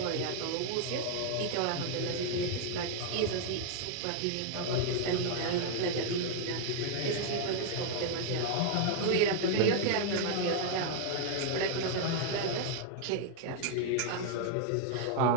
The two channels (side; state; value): both; different; correlation 0.00